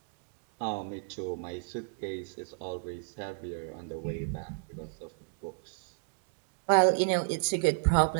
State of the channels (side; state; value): left; silent; 56 dB below the other